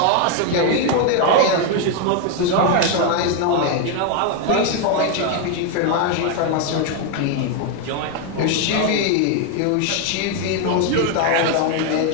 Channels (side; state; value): both; different; correlation 0.01